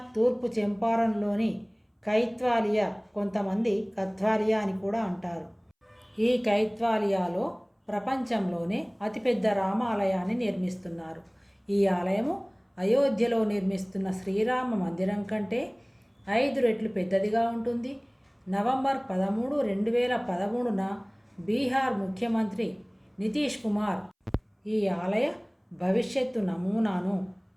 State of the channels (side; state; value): both; identical; correlation 1.00